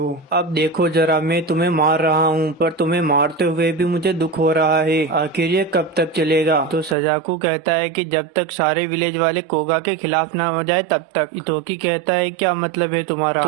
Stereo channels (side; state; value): left; drops out; at 7.0 s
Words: अब देखो जरा, मैं तुम्हें मार रहा हूँ पर तुम्हें मारते हुए भी मुझे दुख हो रहा है, आखिर ये कब तक चलेगा। तो सजाकू कहता है कि जब तक सारे विलेज वाले कोगा के खिलाफ ना हो जाए तब तक। हितोकी कहता है क्या मतलब है तुम्हारा।